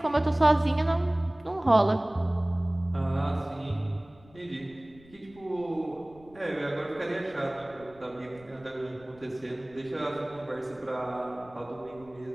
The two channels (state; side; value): noise; left; rumble, 24 dB below the sound